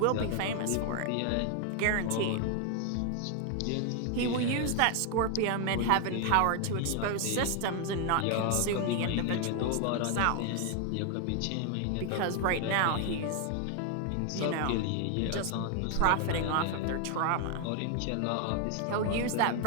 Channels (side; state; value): both; different; correlation 0.00